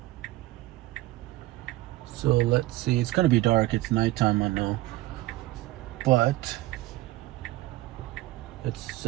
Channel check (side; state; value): left; quieter; 17.7 dB